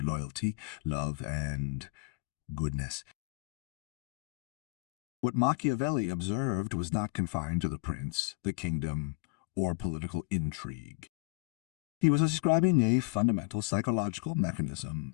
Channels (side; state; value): right; quieter; 26.4 dB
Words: loyalty, love, and goodness. What Machiavelli observed was not confined to the prince, the kingdom, or political intrigue. He was describing a fundamental psychological mechanism,